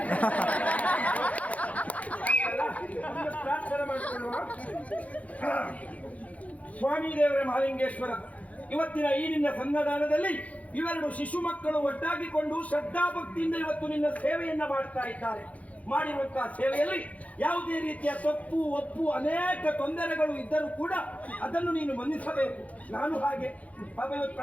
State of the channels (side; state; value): right; late; 0.068 ms